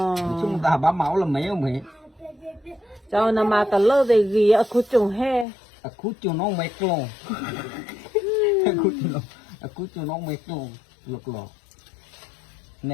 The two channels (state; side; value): drops out; right; at 5.5 s